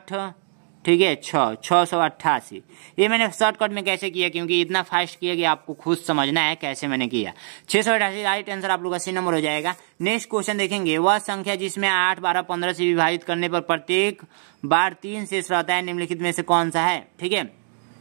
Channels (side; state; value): left; silent; 63 dB below the other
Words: ठीक है 688। ये मैंने शॉर्टकट में कैसे किया, क्योंकि इतना फास्ट किया कि आपको खुद समझना है कैसे मैंने किया। 688 राइट आंसर आप लोग का सी नंबर हो जाएगा। नेक्स्ट क्वेश्चन देखेंगे, वह संख्या जिसमें 8, 12, 15 से विभाजित करने पर प्रत्येक बार 3 शेष रहता है, निम्नलिखित में से कौन सा है। ठीक है,